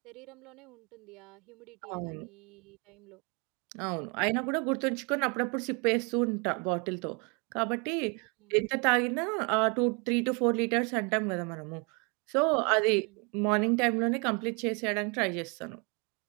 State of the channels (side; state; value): left; quieter; 32.6 dB